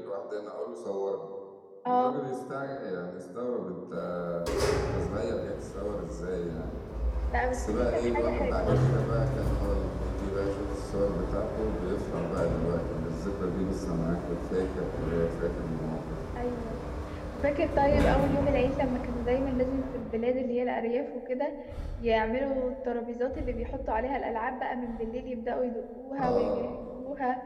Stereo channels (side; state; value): both; identical; correlation 1.00